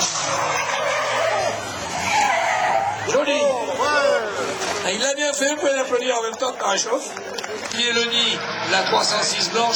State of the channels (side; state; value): both; identical; correlation 1.00